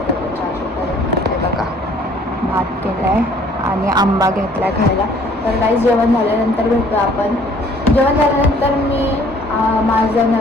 देऊन बघा भात केला आहे. आणि आंबा घेतला आहे खायला. तर गाईज जेवण झाल्यानंतर भेटू आपण. जेवण झाल्यानंतर मी माझा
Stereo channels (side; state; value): both; normal; correlation 0.57